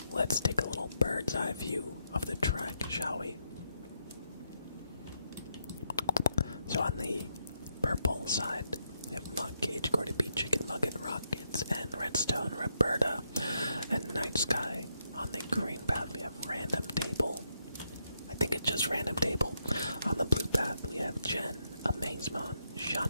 let's take a little bird's eye view of the track, shall we? So on the purple side, we have Monk Cage, Gordy B, Chicken Nugget, Rockets, and Redstone, Roberta, and Night Sky. On the green path, we have Random Table. I think it's just Random Table. On the blue path, we have Jen, Amazemon,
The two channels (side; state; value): both; inverted; correlation -0.80